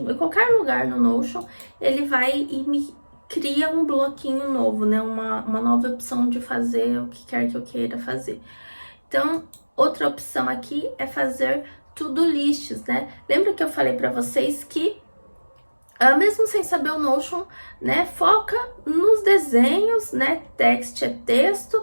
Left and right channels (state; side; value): inverted; both; correlation -1.00